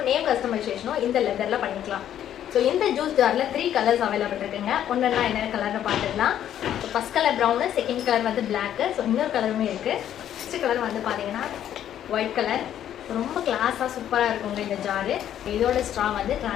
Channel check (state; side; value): quieter; right; 10.7 dB